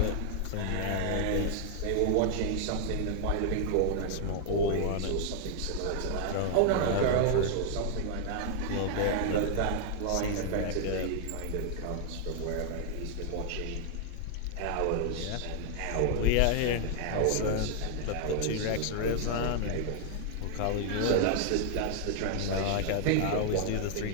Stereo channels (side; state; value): both; different; correlation 0.00